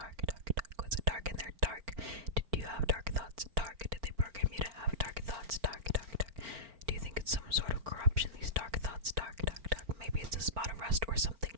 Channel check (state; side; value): late; left; 4.4 ms